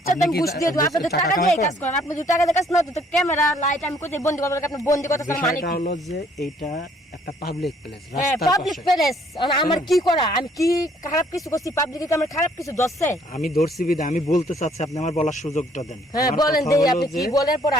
চান আপনি কি ঘুষ দিয়ে দেবো, আপনি যদি টাকা টাকা কামাই দিয়ে করেন? কাজ করেন, আপনি যদি টাকা দিয়ে কাজ না তো ক্যামেরা লাইট আমি কোথায় বন্দি করবো, আপনি বন্দি করতে মানে বিষয়টা কি? হলো যে এইটা একটা পাবলিক প্লেস, হ্যাঁ রাস্তার পাবলিক পাশে। প্লেস, আমার কি করা? আমি কি খারাপ কিছু করছি? পাবলিকে কি আমার খারাপ কিছু দশছে? আমি ধরছি বিদে আমি বলতে চাচ্ছি, আপনি আমার বলার সুযোগটা দেন। হ্যাঁ আমার বলেন কথা দেই, হলো আপনি কি যে বলেন পরে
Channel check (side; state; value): both; normal; correlation 0.63